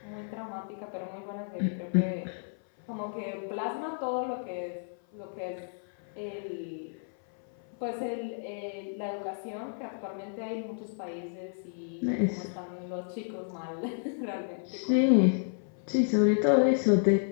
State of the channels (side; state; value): right; silent; 57 dB below the other